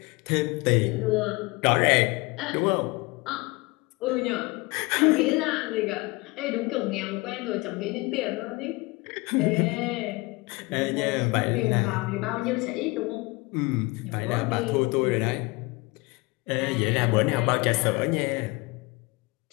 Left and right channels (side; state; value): right; quieter; 24.8 dB